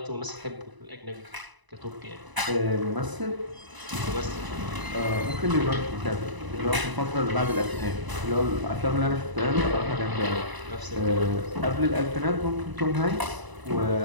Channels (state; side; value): late; left; 1.0 ms